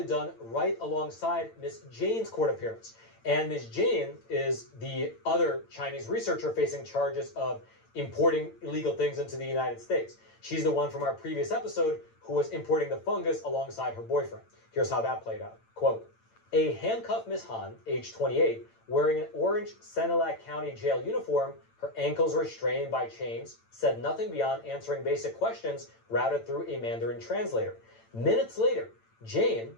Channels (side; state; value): right; late; 8.9 ms